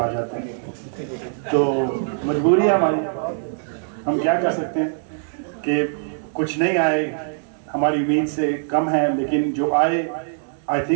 जाते हैं। तो मजबूरी है हमारी, हम क्या कर सकते हैं कि कुछ नहीं आए, हमारी उम्मीद से कम है, लेकिन जो I I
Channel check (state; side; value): silent; left; digital silence